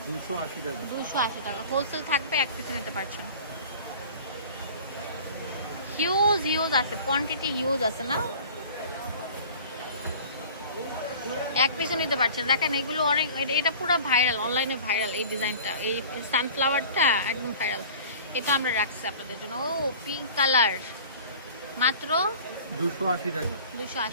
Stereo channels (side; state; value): both; inverted; correlation -0.43